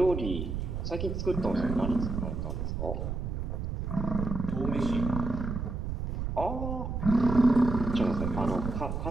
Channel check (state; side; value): noise; right; rumble, 3 dB below the sound